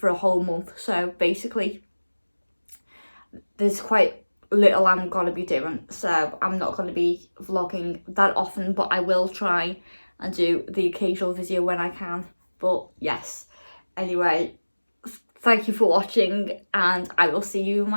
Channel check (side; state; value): both; inverted; correlation -1.00